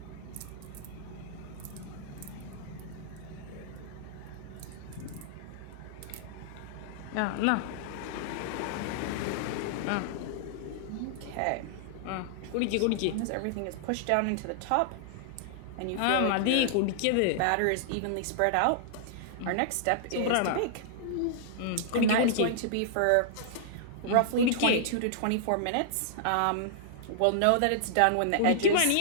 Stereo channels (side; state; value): both; different; correlation -0.01